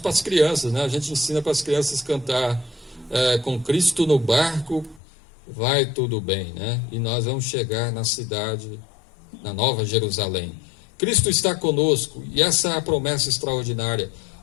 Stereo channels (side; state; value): right; drops out; at 5.0 s